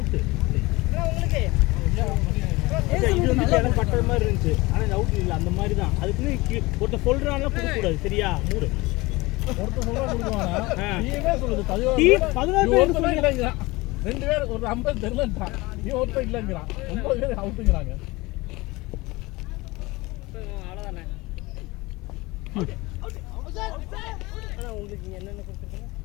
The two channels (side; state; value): right; quieter; 22.1 dB